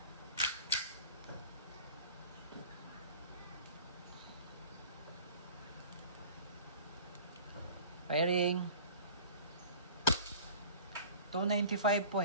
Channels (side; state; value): both; inverted; correlation -0.44